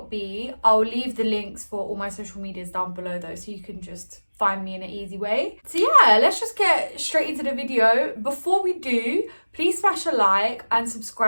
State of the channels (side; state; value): both; inverted; correlation -1.00